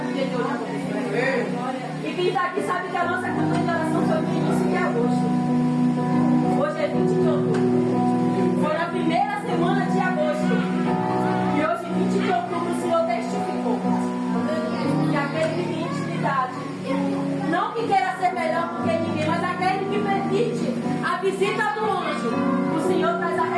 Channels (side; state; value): both; identical; correlation 1.00